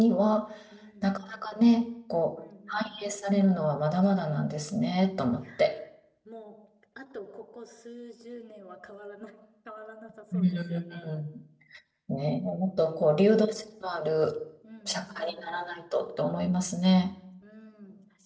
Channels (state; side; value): identical; both; correlation 1.00